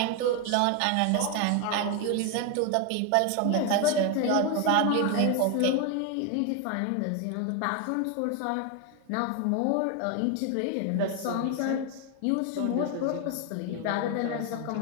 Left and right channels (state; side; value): different; both; correlation 0.01